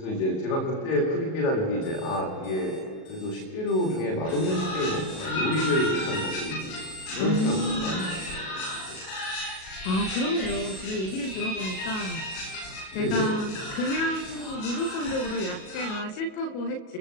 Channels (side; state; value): right; late; 37 ms